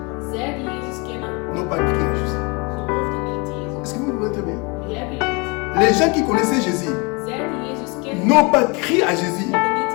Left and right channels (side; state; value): right; quieter; 29.6 dB